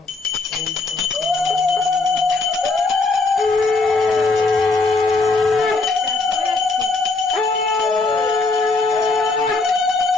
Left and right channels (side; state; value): right; quieter; 3.7 dB